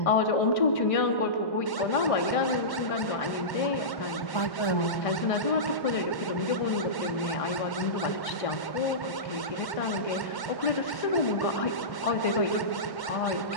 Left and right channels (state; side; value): late; right; 1.1 ms